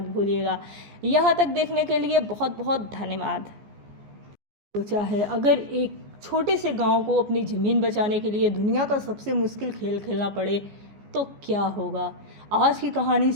भूलिएगा। यहाँ तक देखने के लिए बहुत बहुत धन्यवाद। सोचा है अगर एक छोटे से गांव को अपनी ज़मीन बचाने के लिए दुनिया का सबसे मुश्किल खेल खेलना पड़े तो क्या होगा। आज की कहानी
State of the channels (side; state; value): left; late; 14 ms